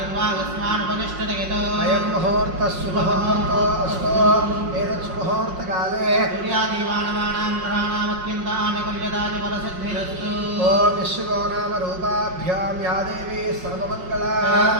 यतो अयं मुहूर्तः सुमुहूर्तो अस्तु। एतत् सुमुहूर्तकाले सूर्यादिवानवानां ग्रहाणामत्यन्तानुकूल्यतानि फलसिद्धिरस्तु। ॐ विश्वको नाम रूपाभ्यां या देवी सर्वमङ्गला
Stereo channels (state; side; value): late; left; 5.6 ms